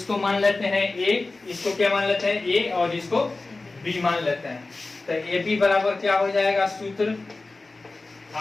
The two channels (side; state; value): right; quieter; 3.4 dB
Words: मान लेते हैं a, इसको क्या मान लेते हैं a और इसको b मान लेते हैं। तो ab बराबर क्या हो जाएगा, सूत्र